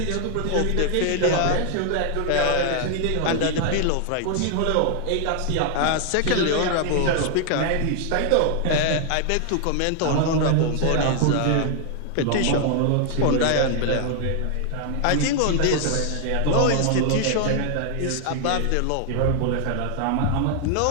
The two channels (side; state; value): both; different; correlation 0.00